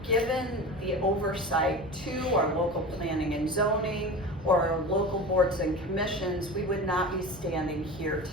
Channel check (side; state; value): both; normal; correlation 0.31